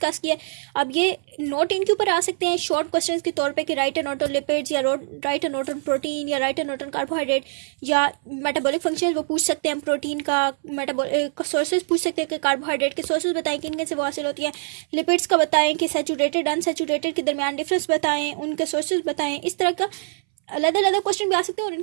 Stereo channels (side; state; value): left; silent; 61 dB below the other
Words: किया। अब ये नोट इनके ऊपर आ सकते हैं शॉर्ट क्वेश्चंस के तौर पे कि write and note on lipids, या write and note on protein, या write and note on carbohydrate, या मेटाबॉलिक फंक्शन वो पूछ सकते हैं, प्रोटीन का सोर्सेज पूछ सकते हैं कि कार्बोहाइड्रेट के सोर्सेज बताएं किन किन से वो हासिल होती है, लिपिड्स का बताएं कि सैचुरेटेड अनसैचुरेटेड के दरमियान डिफरेंस बताएं, उनके सोर्सेज बताएं। इस तरह का अलग अलग क्वेश्चन भी आ सकते हैं और